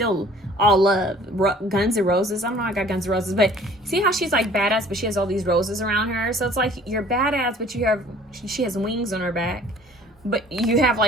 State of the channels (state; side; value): normal; both; correlation 0.52